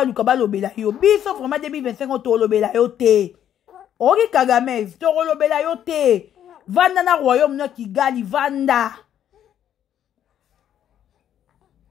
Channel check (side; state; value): right; quieter; 10.2 dB